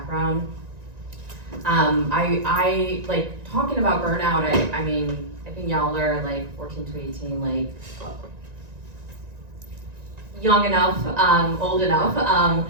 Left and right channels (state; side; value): late; left; 1.9 ms